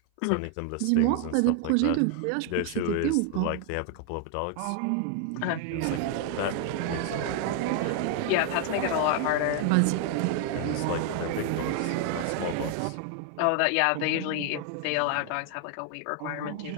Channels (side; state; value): both; different; correlation 0.00